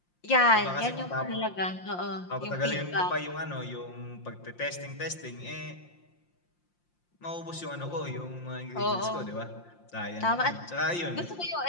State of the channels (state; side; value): late; right; 5.7 ms